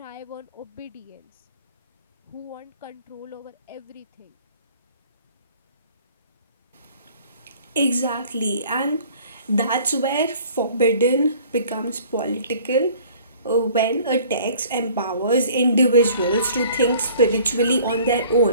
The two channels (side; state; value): both; inverted; correlation -0.52